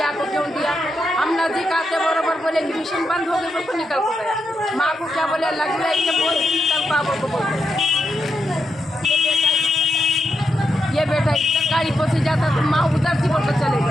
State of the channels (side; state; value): both; normal; correlation 0.84